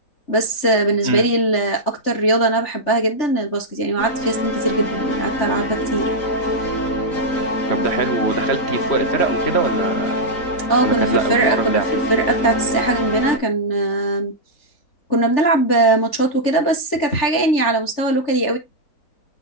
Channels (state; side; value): late; right; 3.4 ms